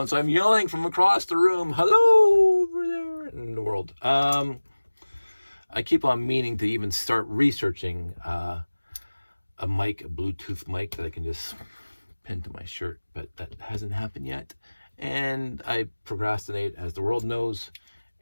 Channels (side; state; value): both; inverted; correlation -1.00